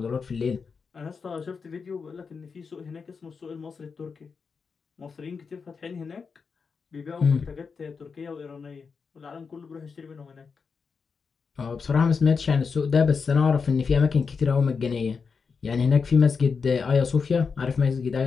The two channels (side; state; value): right; quieter; 5.4 dB